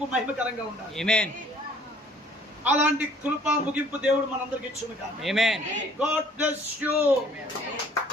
మహిమకరంగా ఉండాలి. అలాంటి కృప ముగింపు దేవుడు మనందరికి ఇచ్చును గాక. God bless you.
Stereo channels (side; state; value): both; normal; correlation 0.56